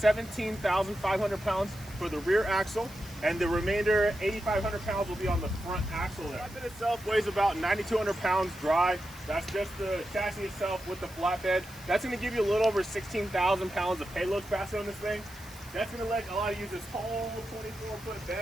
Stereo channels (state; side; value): noise; right; hiss, 20 dB below the sound